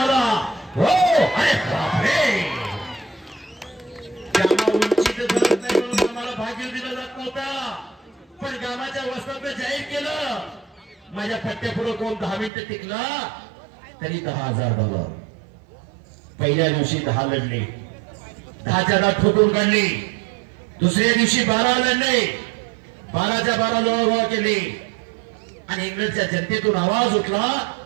हो. अरे बापरे. गामा उंचीत धरत नाही म्हणून आम्हाला भाग्य दिला जात नव्हता. पण गामाच्या वस्त्रात जाहीर केलं. माझ्या पट्ट्यापुढे कोण 10 मिनिटं टिकला तरी $10,000. पहिल्या दिवशी 10 लढले. 10च्या 10 ठोकून काढली. दुसऱ्या दिवशी 12 लढले. 12च्या 12 लोळा केले. आणि इंग्लंडच्या जनतेतून आवाज उठला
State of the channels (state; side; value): drops out; left; at 12.5 s